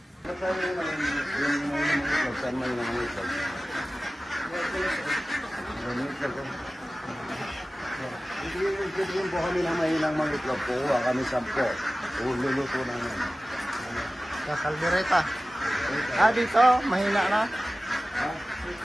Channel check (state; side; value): normal; both; correlation 0.96